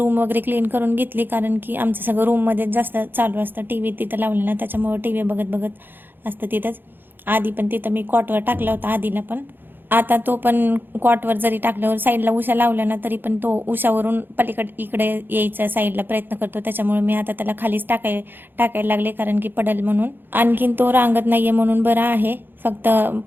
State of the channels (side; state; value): left; late; 0.096 ms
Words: वगैरे क्लीन करून घेतली, कारण की आमचं सगळं रूममध्ये जास्त चालू असतं. टी व्ही तिथं लावलेला, त्याच्यामुळं टी व्ही बघत बघत असतं तिथंच. आधी पण तिथं मी कॉटवर टाकला होता आधीला पण. आता तो पण कॉटवर जरी टाकल्यावर साईडला उशा लावल्या ना तरी पण तो उशावरून पलीकडे इकडे यायचा साईडला प्रयत्न करतो. त्याच्यामुळे मी आता त्याला खालीच टाकायला लागले, कारण की पडल म्हणून. आणखीन तो रांगत नाहीये म्हणून बरं आहे, फक्त